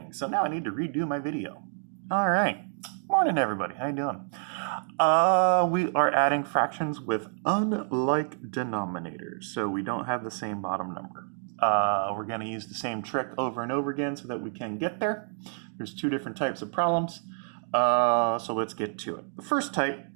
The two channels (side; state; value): left; silent; 59 dB below the other